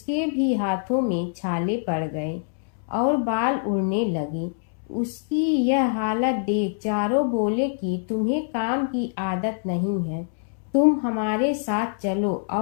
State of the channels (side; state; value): right; silent; 62 dB below the other